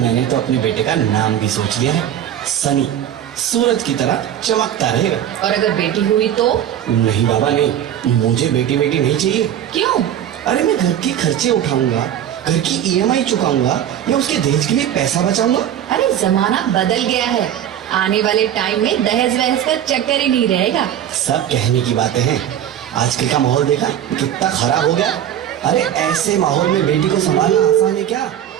तो अपने बेटे का नाम भी सोच लिया है, सनी। सूरज की तरह चमकता रहेगा। और अगर बेटी हुई तो? नहीं बाबा नहीं, मुझे बेटी नहीं चाहिए। क्यों? अरे मैं घर के खर्चे उठाऊंगा, घर की ईएमआई चुकाऊंगा या उसके दहेज के लिए पैसा बचाऊंगा। अरे जमाना बदल गया है, आने वाले टाइम में दहेज वहेज का चक्कर ही नहीं रहेगा। सब कहने की बातें हैं, आजकल का माहौल देखा कितना खराब हो गया। अरे ऐसे माहौल में बेटी को संभालना आसान है क्या?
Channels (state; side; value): quieter; left; 10.5 dB